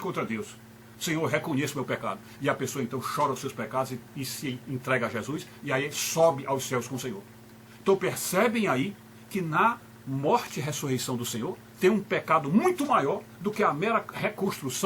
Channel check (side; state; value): both; identical; correlation 1.00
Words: Deus. Senhor, eu reconheço meu pecado. E a pessoa então chora os seus pecados e se entrega a Jesus, e aí sobe aos céus com o Senhor. Então percebem aí que na morte e ressurreição do Senhor tem um pecado muito maior do que a mera